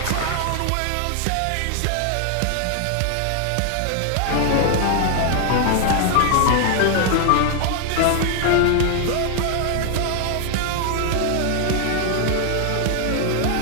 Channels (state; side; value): different; both; correlation 0.00